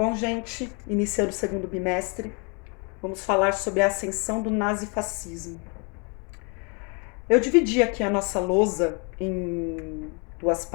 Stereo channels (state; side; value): quieter; right; 34.4 dB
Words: gente, iniciando o segundo bimestre, vamos falar sobre a ascensão do nazifascismo. Eu dividi aqui a nossa lousa em duas